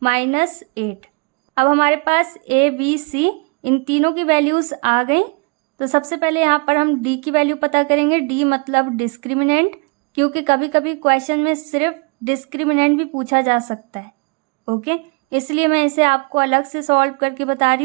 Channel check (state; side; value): quieter; left; 32.2 dB